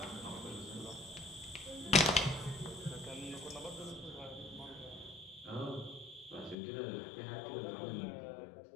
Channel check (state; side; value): drops out; right; at 6.6 s